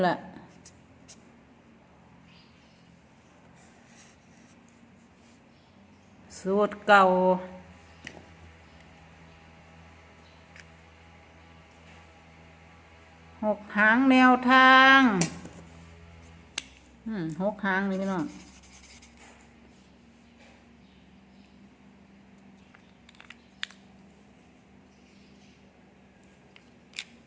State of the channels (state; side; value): identical; both; correlation 1.00